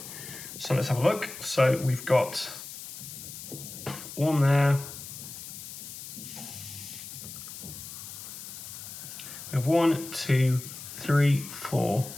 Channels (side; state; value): left; noise; hiss, 11 dB below the sound